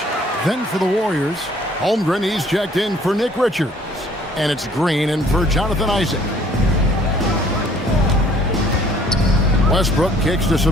Then for the Warriors, Holmgren, he's checked in for Nick Richards. And it's Green in for Jonathan Isaac. Westbrook kicks to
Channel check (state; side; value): normal; both; correlation 0.58